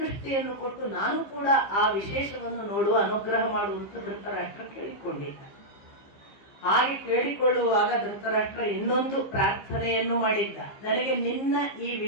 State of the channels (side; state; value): right; late; 15 ms